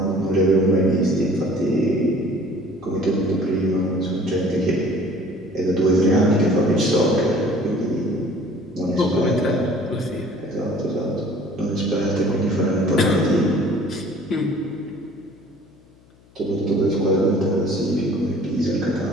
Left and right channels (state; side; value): noise; left; hum, 29 dB below the sound